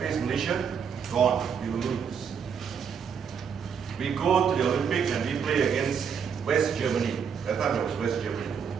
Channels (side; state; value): left; quieter; 7.0 dB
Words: Malaysia, gone, we will lose. We go to the Olympics and we play against West Germany. That time it was West Germany,